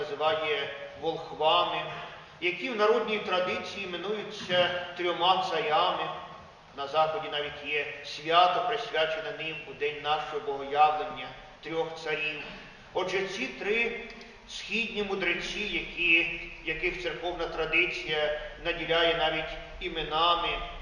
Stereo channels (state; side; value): identical; both; correlation 1.00